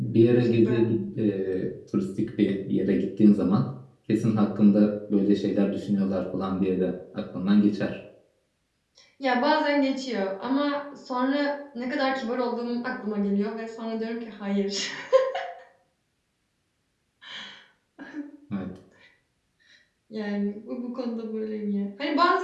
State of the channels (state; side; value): identical; both; correlation 1.00